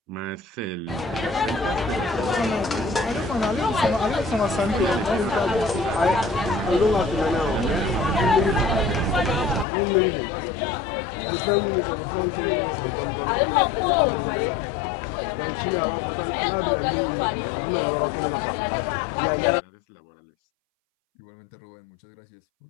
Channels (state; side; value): drops out; right; at 9.7 s